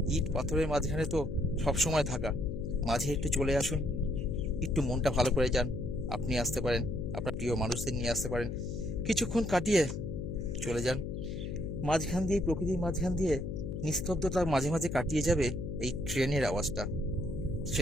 ইট পাথরের মাঝখানে তো সবসময় থাকা, মাঝে একটু চলে আসুন, একটু মনটা ভালো করে যান। আপনি আসতে পারেন, আপনার প্রিয় মানুষদের নিয়ে আসতে পারেন, কিছুক্ষণ কাটিয়ে চলে যান। মাঝখান দিয়ে, প্রকৃতির মাঝখান দিয়ে নিস্তব্ধতা মাঝে মাঝে কাটিয়ে যাবে এই ট্রেনের আওয়াজটা,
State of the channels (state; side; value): noise; left; hum, 5 dB below the sound